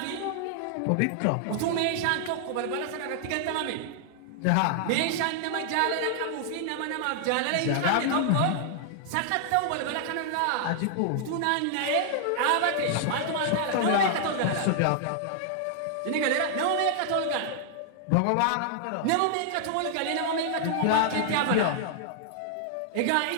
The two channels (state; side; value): different; both; correlation -0.01